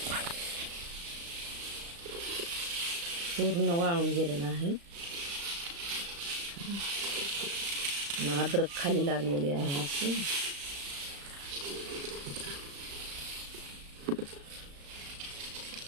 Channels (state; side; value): late; left; 35 ms